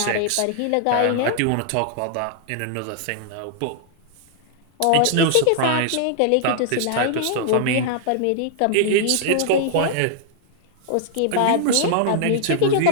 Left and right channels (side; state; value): both; different; correlation -0.01